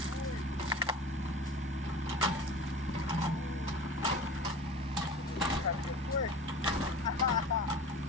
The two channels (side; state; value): both; normal; correlation 0.37